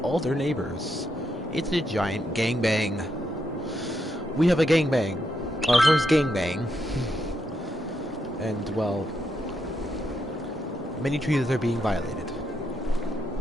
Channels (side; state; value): both; normal; correlation 0.81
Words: all their neighbors. It's a giant gangbang. We have a gangbang. Our first gangbang. And well, many treaties are being violated.